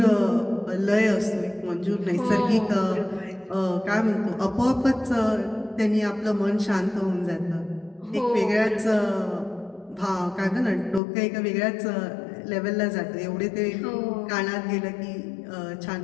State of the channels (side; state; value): right; drops out; at 11.0 s